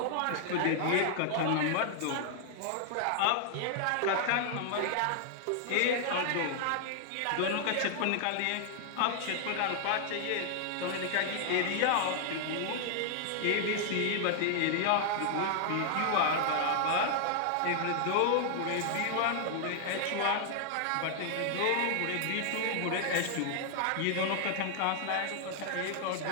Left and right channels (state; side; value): different; both; correlation 0.00